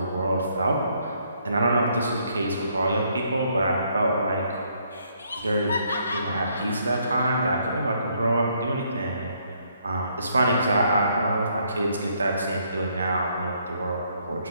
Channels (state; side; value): inverted; both; correlation -0.70